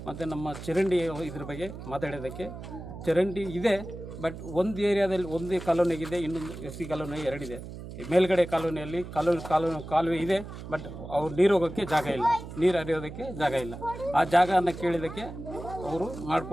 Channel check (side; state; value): right; noise; hum, 11 dB below the sound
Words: ಮತ್ತು ನಮ್ಮ ಚರಂಡಿ ಇದ್ರ ಬಗ್ಗೆ ಮಾತಾಡೋದಕ್ಕೆ ಚರಂಡಿ ಇದೆ, ಬಟ್ ಒಂದು ಏರಿಯಾದಲ್ಲಿ ಒಂದು ಕಾಲೋನಿಗಿದೆ, ಇನ್ನೊಂದು SC ಕಾಲೋನಿ ಎರಡಿದೆ. ಮೇಲ್ಗಡೆ ಕಾಲೋನಿಯಲ್ಲಿ ಕಾಲುವೆ ಇದೆ, ಬಟ್ ಅವ್ರು ನೀರು ಹೋಗೋಕ್ಕೆ ಜಾಗ ಇಲ್ಲ, ನೀರು ಹರಿಯೋದಕ್ಕೆ ಜಾಗ ಇಲ್ಲ. ಆ ಜಾಗವನ್ನು ಕೇಳಿದ್ದಕ್ಕೆ ಅವರು